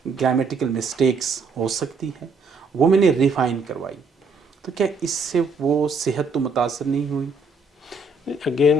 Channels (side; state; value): left; quieter; 3.6 dB